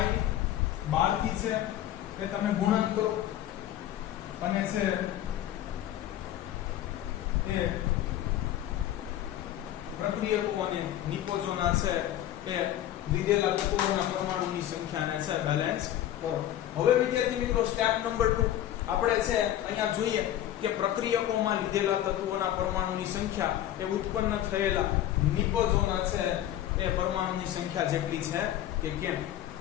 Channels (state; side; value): quieter; right; 12.4 dB